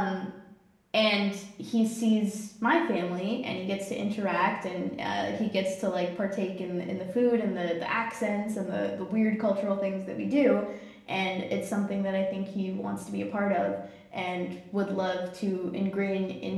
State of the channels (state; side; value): identical; both; correlation 1.00